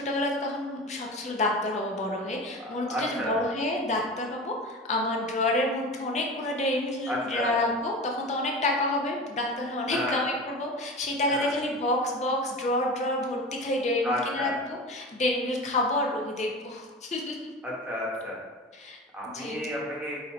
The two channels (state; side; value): normal; both; correlation 0.31